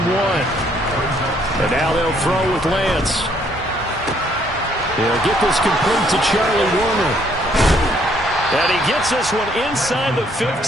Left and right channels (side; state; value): both; normal; correlation 0.67